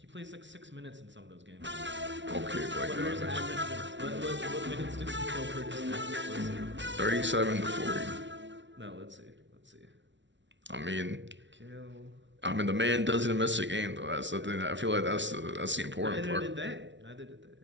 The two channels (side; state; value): left; late; 0.54 ms